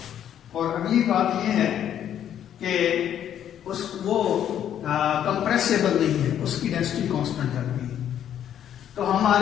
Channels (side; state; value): right; quieter; 10.2 dB